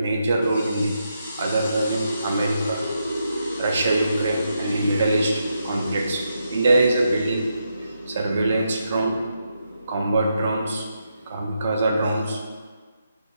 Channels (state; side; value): inverted; both; correlation -0.82